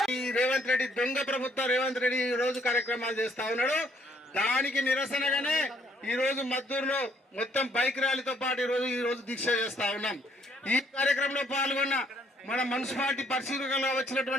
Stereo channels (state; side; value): normal; both; correlation 0.67